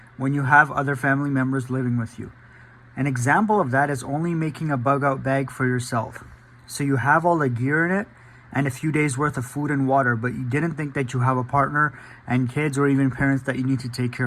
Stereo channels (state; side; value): identical; both; correlation 1.00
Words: when you have other family members living with you. An example of that is only making a bug out bag for yourself. So you have all the gear in it and a few days worth of food and water, but you didn't think that you have a partner and kids or even parents that you need to take